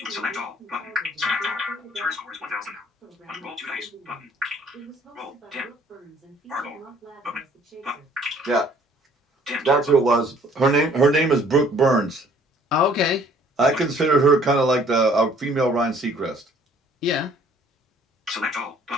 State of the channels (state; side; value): normal; both; correlation 0.58